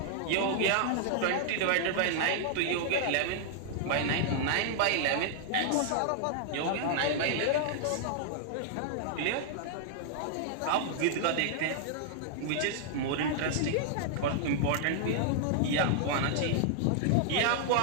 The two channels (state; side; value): different; both; correlation -0.01